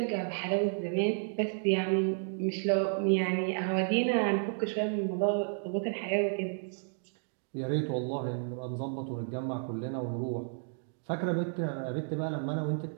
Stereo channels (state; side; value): silent; left; digital silence